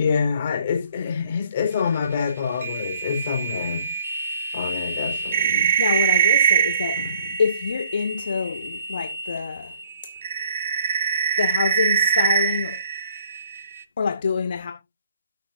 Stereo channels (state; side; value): inverted; both; correlation -0.60